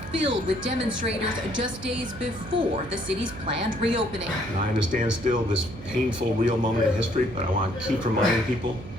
filled with demonstrators just days before the city's planned reopening. And I understand still this painful, real moment in history, but I want to keep reminding people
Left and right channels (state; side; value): noise; right; hum, 14 dB below the sound